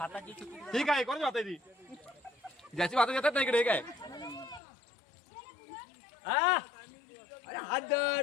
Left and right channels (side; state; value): right; drops out; at 4.6 s